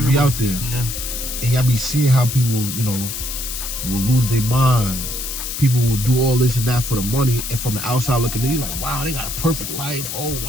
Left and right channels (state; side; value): noise; left; hiss, 5 dB below the sound